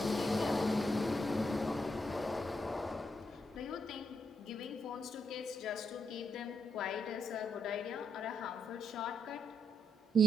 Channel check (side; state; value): both; normal; correlation 0.79